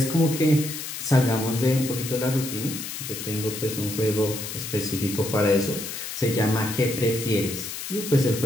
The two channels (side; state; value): left; noise; hiss, 7 dB below the sound